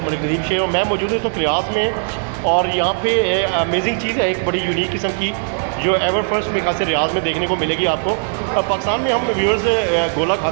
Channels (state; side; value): silent; left; digital silence